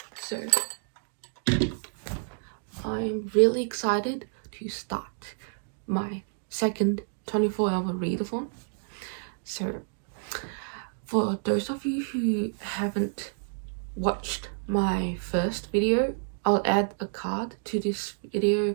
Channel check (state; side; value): silent; left; digital silence